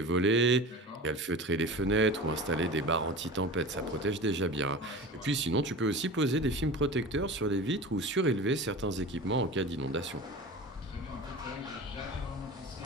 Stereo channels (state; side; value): normal; both; correlation 0.33